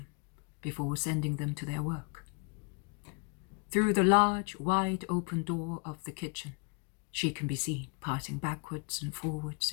before sending them to their work. Through the large, wide open door of the kitchen, she can be seen passing backwards and forwards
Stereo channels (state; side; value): quieter; right; 34.2 dB